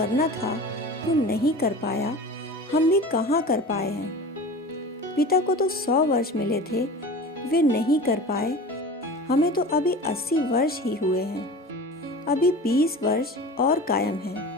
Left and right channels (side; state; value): both; normal; correlation 0.35